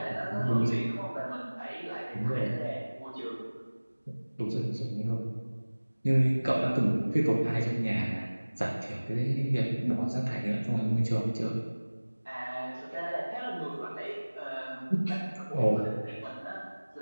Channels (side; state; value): both; inverted; correlation -1.00